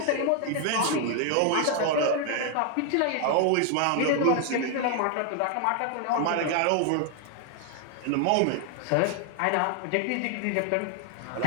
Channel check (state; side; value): different; both; correlation 0.00